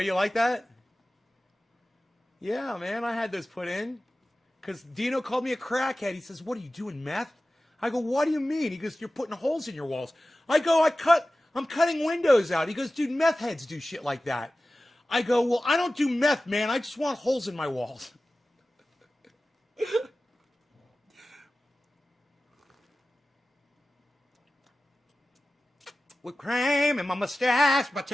like that? Yeah, man, I had those put in. Because Dino called me a crackhead. He says, what are you doing, meth? I go, what do you mean? He goes, you're putting holes in your walls. I go, I'm cutting windows out. He goes, dude, meth heads do shit like that. I go, well, I don't do meth, man. I just want holes in my walls. With cream in my mustache, but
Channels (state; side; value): normal; both; correlation 0.96